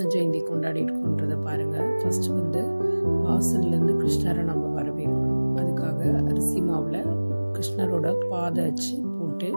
ஜெயந்தி கொண்டாடி இருக்கோன்றதை பாருங்கள். ஃபஸ்ட்டு வந்து வாசல்லேருந்து கிருஷ்ணரை நம்ம வரவேற்கணும். அதுக்காக அரிசி மாவில் கிருஷ்ணரோட பாதை வச்சு போட்டு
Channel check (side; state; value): both; inverted; correlation -1.00